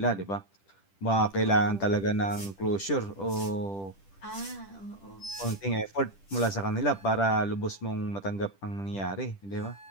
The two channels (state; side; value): late; right; 10 ms